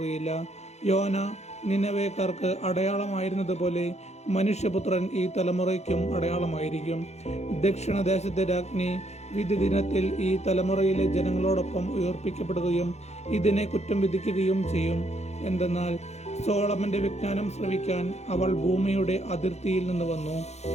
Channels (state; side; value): late; right; 0.32 ms